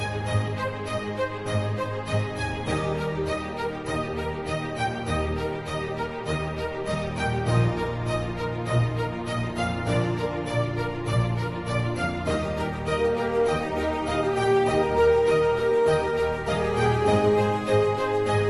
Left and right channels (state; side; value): identical; both; correlation 1.00